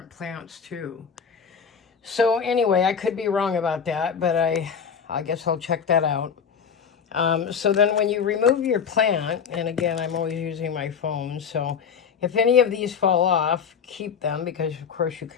plants too. So anyway, I could be wrong about that, but I guess I'll check that out. So then when you remove your plant, and again, I'm always using my phone, so if any of these fall off, keep them, because of course you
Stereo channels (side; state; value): right; quieter; 6.8 dB